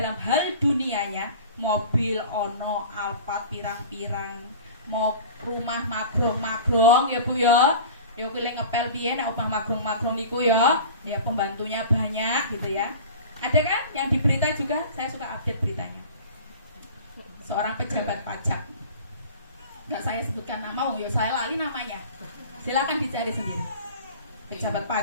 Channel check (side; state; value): both; inverted; correlation -0.39